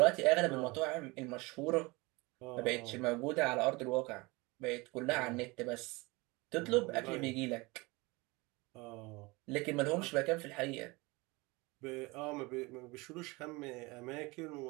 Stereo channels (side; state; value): left; quieter; 24.4 dB